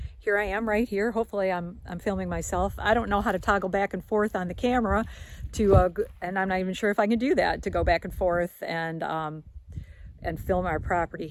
Here I am right here. Hopefully I'm filming myself. I don't know how to toggle back and forth on the camera and I'm not even sure if I can do that, to go back and forth and film our property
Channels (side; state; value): both; identical; correlation 1.00